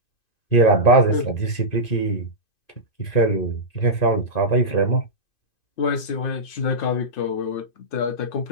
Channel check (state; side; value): late; right; 2.5 ms